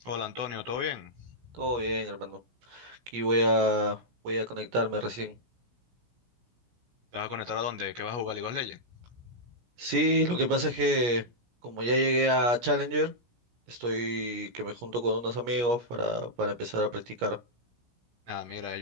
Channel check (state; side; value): late; left; 17 ms